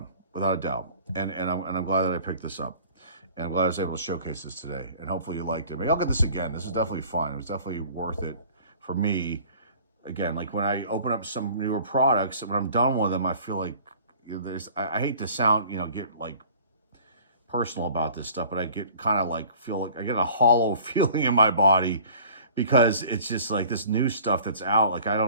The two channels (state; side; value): inverted; both; correlation -0.48